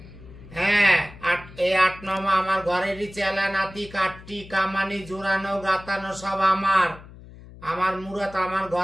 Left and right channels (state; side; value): noise; left; hum, 18 dB below the sound